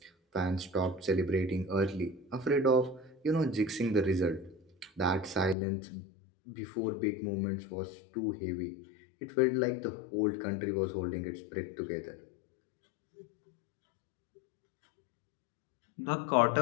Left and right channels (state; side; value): drops out; right; at 5.6 s